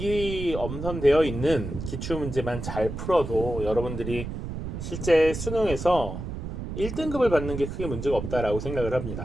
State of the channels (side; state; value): right; noise; rumble, 7 dB below the sound